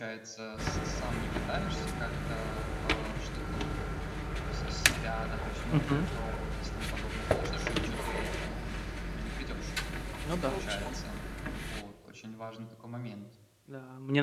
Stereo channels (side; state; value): both; identical; correlation 1.00